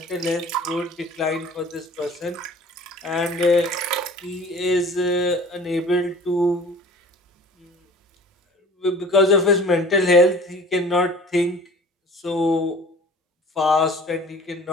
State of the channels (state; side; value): normal; both; correlation 0.45